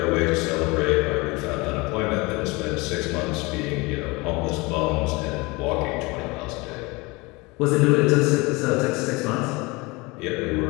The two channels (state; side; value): quieter; right; 24.9 dB